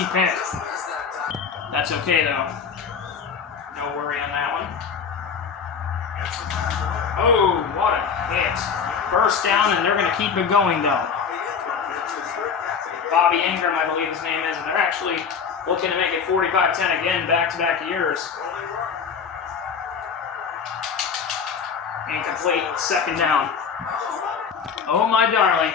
pick. That's okay, though. No worry on that one. Oh, what a hit. 1st down, and they're going to keep it going, though. Bobby Ingram, I believe his name is, and they're actually looking to make it 45-10 again, back-to-back years. Incomplete, 2nd down. Oh, my darling.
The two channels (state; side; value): quieter; right; 6.3 dB